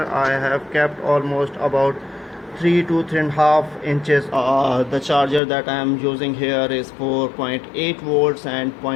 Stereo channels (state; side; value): drops out; right; at 5.4 s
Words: I have kept almost about 3 to 3.5 inches. The charger that I am using here is 4.8 volts and